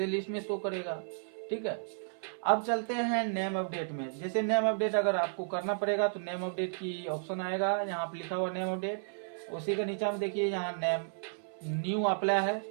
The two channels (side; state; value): left; silent; 56 dB below the other